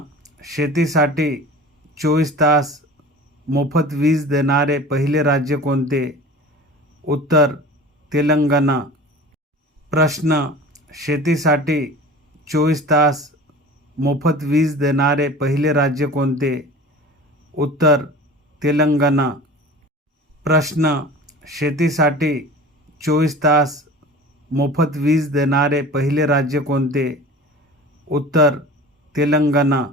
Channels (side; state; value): both; normal; correlation 0.39